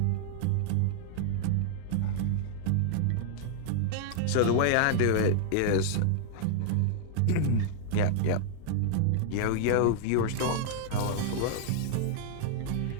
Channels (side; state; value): both; different; correlation -0.01